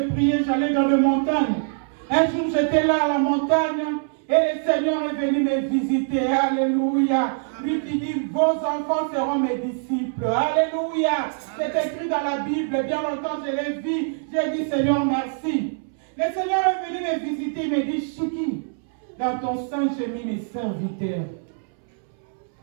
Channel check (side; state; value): left; silent; 63 dB below the other